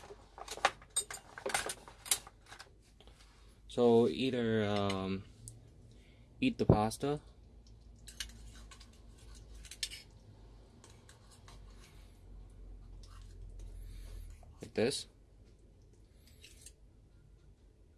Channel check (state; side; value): identical; both; correlation 1.00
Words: So either eat the pasta, like this,